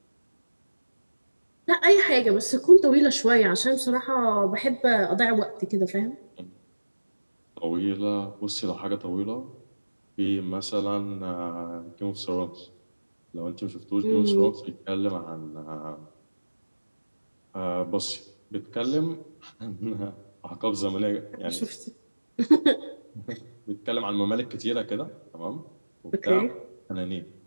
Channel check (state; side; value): inverted; both; correlation -1.00